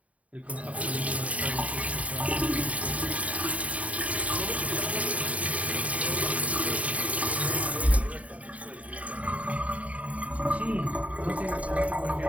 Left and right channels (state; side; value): late; left; 0.068 ms